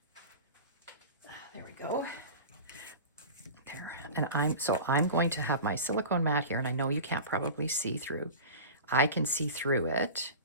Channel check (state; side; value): inverted; both; correlation -0.33